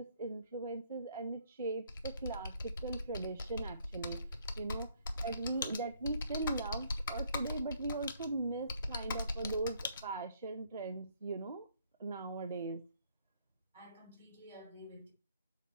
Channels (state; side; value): inverted; both; correlation -0.66